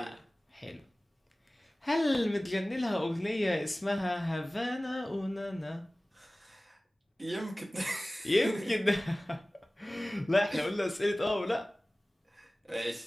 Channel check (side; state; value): both; normal; correlation 0.98